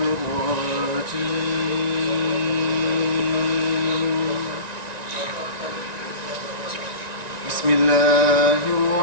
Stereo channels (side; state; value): left; late; 1.9 ms